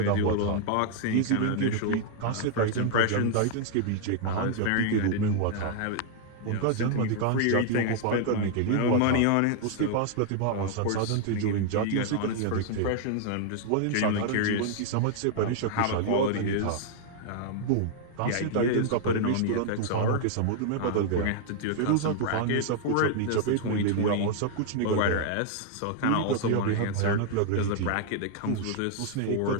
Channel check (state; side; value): different; both; correlation 0.00